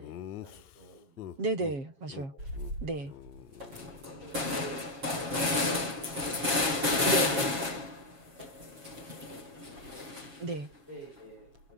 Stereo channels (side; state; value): left; late; 7.4 ms